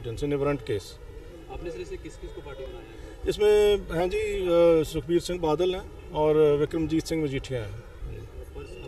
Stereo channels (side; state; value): both; identical; correlation 1.00